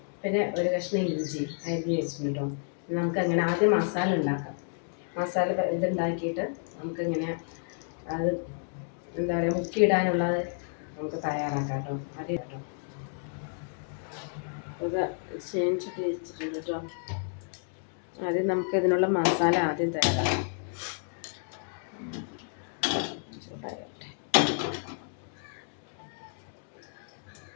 പിന്നെ ഒരു കഷ്ണം ഇഞ്ചി അരിഞ്ഞ് വെച്ചിട്ടുണ്ടോ. നമുക്കങ്ങനെ ആദ്യം മസാല ഉണ്ടാക്കാം. മസാല ഇതുണ്ടാക്കിയിട്ട് നമുക്കിങ്ങനെ അത് എന്താ പറയുക മുക്കിയിടാനുള്ളത് നമുക്ക് തയ്യാറാക്കാം കേട്ടോ. ആദ്യം കേട്ടോ ഇത് ചേഞ്ചിട്ട് വെച്ചിട്ടുണ്ട് കേട്ടോ. ആദ്യം നമുക്ക് ഇതിനുള്ള മസാല ആദ്യം തയ്യാറാക്കാം.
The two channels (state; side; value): silent; right; 57 dB below the other